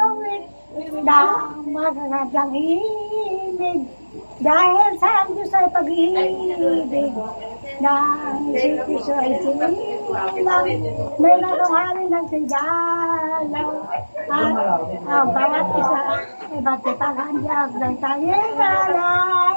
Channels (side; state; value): both; inverted; correlation -1.00